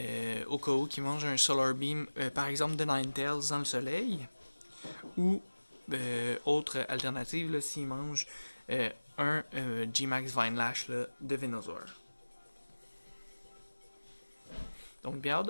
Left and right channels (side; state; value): both; inverted; correlation -1.00